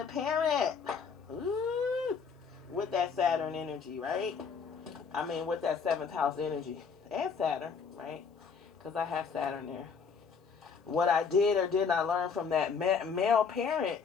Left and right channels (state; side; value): quieter; right; 5.8 dB